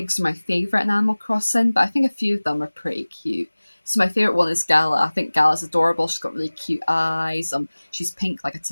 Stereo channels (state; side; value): inverted; both; correlation -1.00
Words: are my favourite in Animal Crossing, but I think a few of them are pretty cute. So my favourite one is Gala. I think Gala's adorable. She's got really cute eyes. She's pink like a